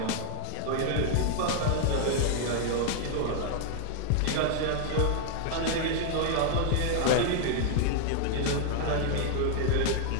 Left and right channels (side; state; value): both; different; correlation -0.01